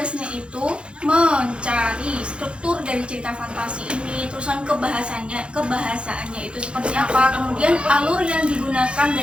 itu mencari struktur dari cerita fantasi ini, terusan kebahasaannya itu seperti apa, kemudian alur yang digunakan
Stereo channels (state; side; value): late; left; 0.057 ms